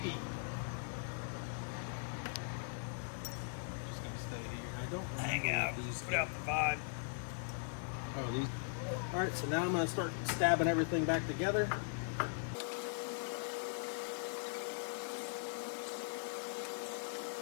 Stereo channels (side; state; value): right; silent; digital silence